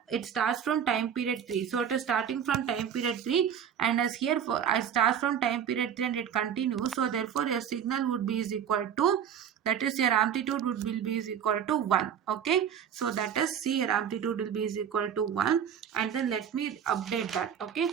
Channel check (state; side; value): quieter; left; 8.5 dB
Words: it starts from time period 3, so it is starting from time period 3, and as here for I start from time period 3 and it continues, so therefore your signal would be is equal to, that is your amplitude would be is equal to 1. Okay, so that is, see, your amplitude will be is equal to 1, and then let me update that. Okay,